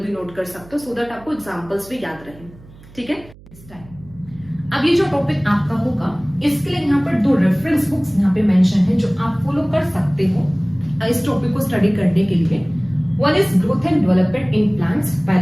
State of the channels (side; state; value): right; noise; hum, 22 dB below the sound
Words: नोट कर सकते हो सो दैट आपको एग्जाम्पल्स भी याद रहे। ठीक है, अब ये जो टॉपिक आपका होगा इसके लिए यहाँ पर दो रेफरेंस बुक्स यहाँ पे मेंशन है जो आप फॉलो कर सकते हो इस टॉपिक को स्टडी करने के लिए। One is growth and development in plants by